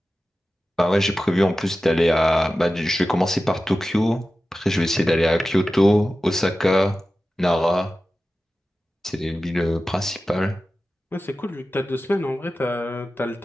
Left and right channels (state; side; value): normal; both; correlation 0.94